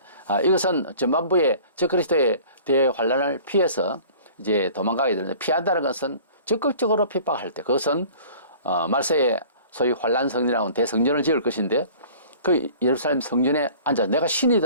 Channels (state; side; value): inverted; both; correlation -0.47